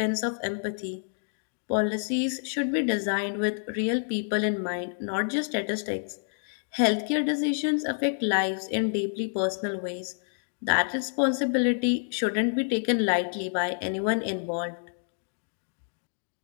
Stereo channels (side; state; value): right; silent; digital silence